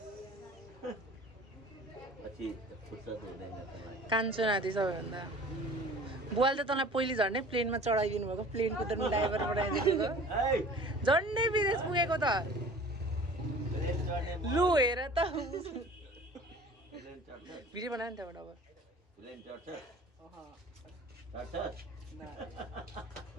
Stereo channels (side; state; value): both; normal; correlation 0.45